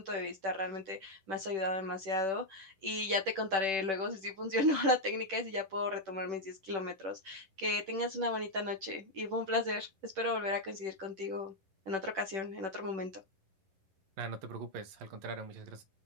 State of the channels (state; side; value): late; left; 10 ms